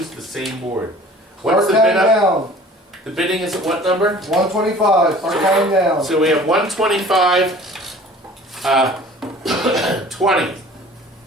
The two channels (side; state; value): both; normal; correlation 0.47